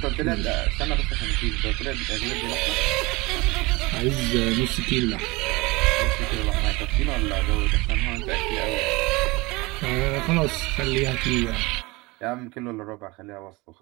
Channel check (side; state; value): left; quieter; 23.5 dB